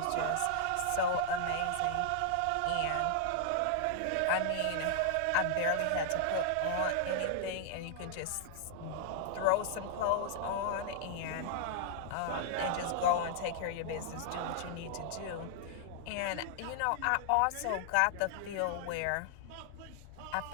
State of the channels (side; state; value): both; different; correlation -0.01